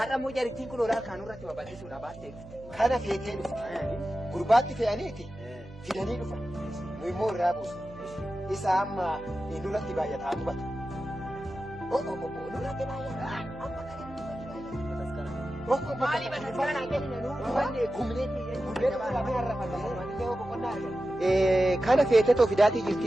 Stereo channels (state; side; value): noise; right; hum, 19 dB below the sound